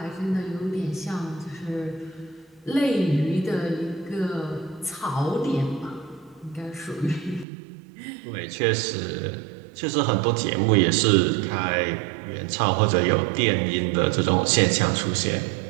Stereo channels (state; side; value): drops out; left; at 7.5 s